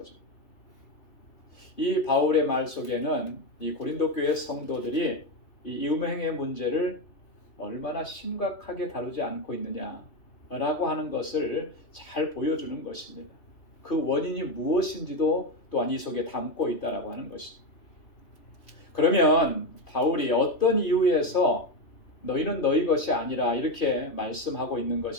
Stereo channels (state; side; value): late; right; 3.2 ms